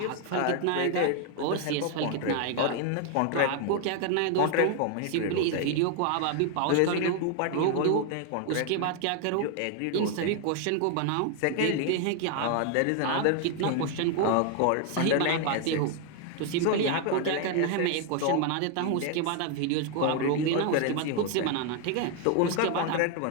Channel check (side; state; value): both; different; correlation 0.01